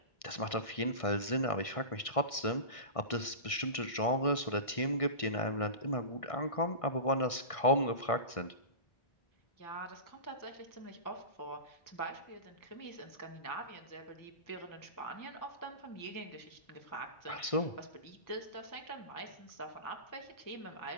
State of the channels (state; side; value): late; right; 1.6 ms